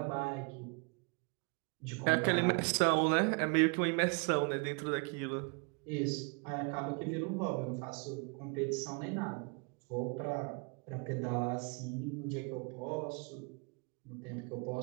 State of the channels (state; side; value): quieter; left; 33.6 dB